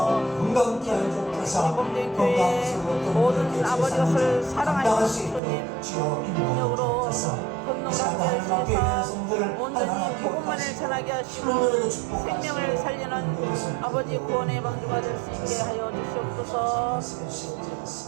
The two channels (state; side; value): drops out; left; at 5.4 s